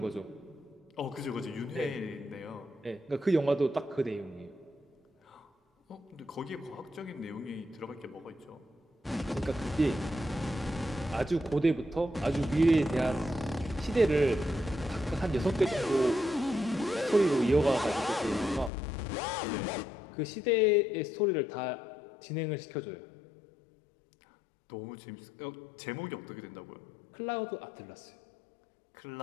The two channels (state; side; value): drops out; right; at 18.7 s